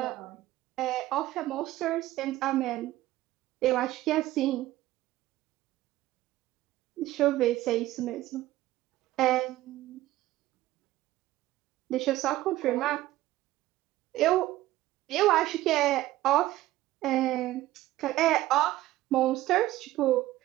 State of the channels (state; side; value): quieter; left; 15.9 dB